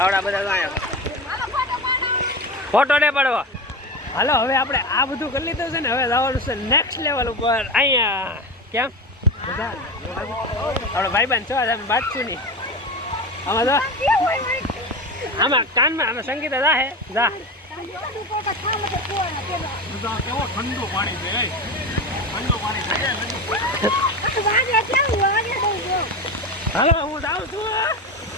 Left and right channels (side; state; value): both; normal; correlation 0.23